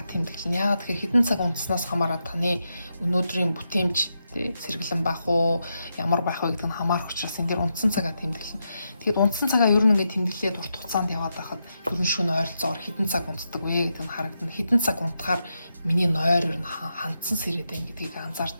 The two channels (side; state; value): both; inverted; correlation -0.85